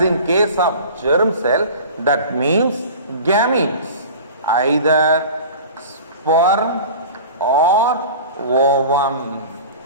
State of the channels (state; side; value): inverted; both; correlation -0.38